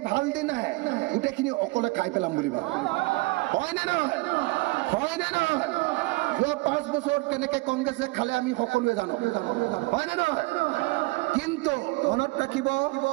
ভাল দিন আহে গোটেইখিনি অকলে খাই পেলাম বুলি ভাবে হয় নে নহয় যোৱা 5 বছৰত কেনেকৈ কংগ্ৰেছে খালে আমি সকলোৱে জানো হয় নে নহয় কিন্তু মনত ৰাখিব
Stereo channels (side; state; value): left; quieter; 23.6 dB